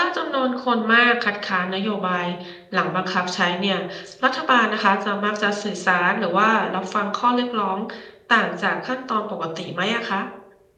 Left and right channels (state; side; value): identical; both; correlation 1.00